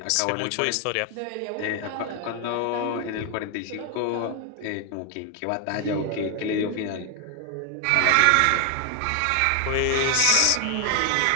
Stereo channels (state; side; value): different; both; correlation 0.00